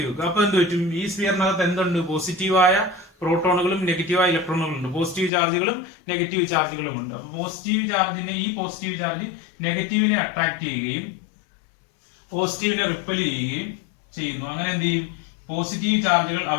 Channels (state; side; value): drops out; right; at 5.3 s